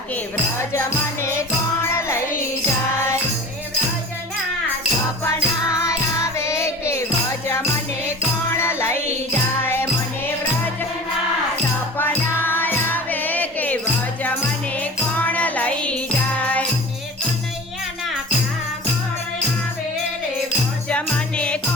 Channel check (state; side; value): normal; both; correlation 0.38